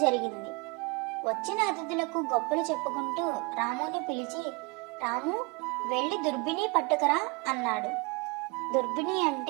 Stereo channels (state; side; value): quieter; left; 29.0 dB